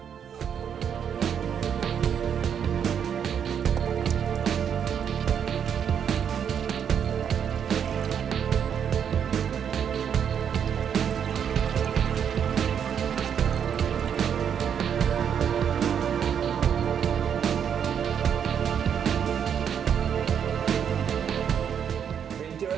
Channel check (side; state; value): left; quieter; 8.1 dB